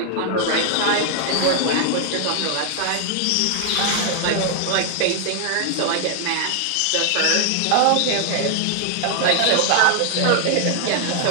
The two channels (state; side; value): different; both; correlation 0.00